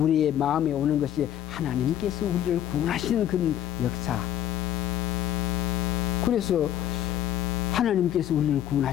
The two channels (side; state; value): right; quieter; 11.2 dB